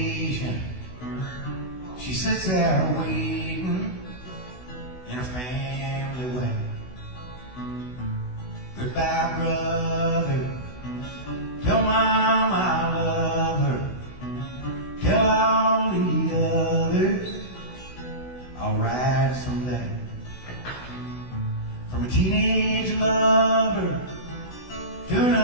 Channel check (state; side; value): late; right; 16 ms